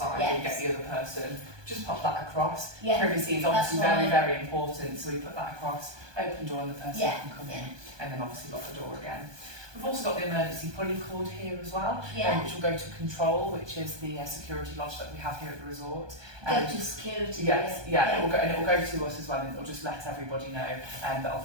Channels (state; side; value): late; left; 1.2 ms